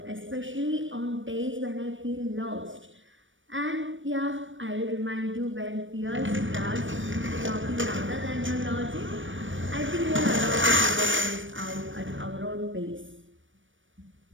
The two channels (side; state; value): left; late; 0.56 ms